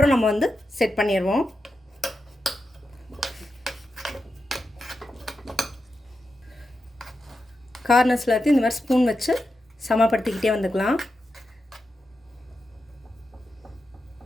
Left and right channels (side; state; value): both; normal; correlation 0.88